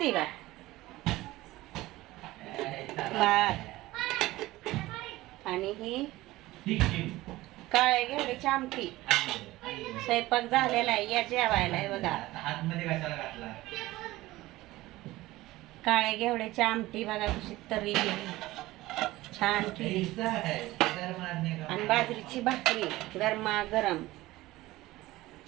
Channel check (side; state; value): left; quieter; 18.0 dB